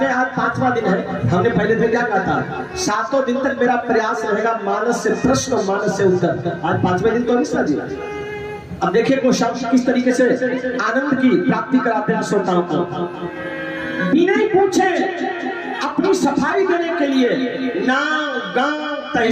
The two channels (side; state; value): both; identical; correlation 1.00